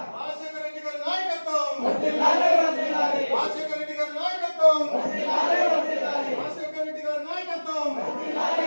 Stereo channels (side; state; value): both; inverted; correlation -1.00